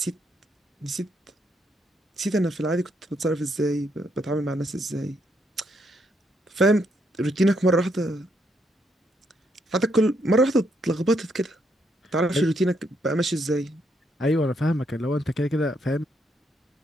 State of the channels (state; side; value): normal; both; correlation 0.76